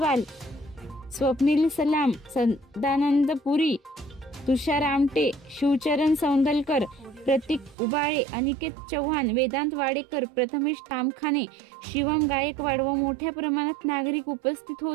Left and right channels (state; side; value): drops out; left; at 7.8 s